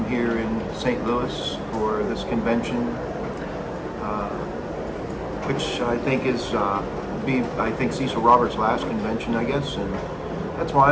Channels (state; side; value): identical; both; correlation 1.00